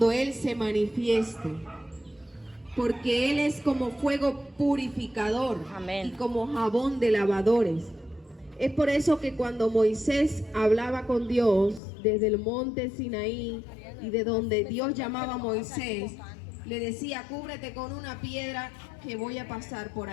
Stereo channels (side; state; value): right; drops out; at 11.8 s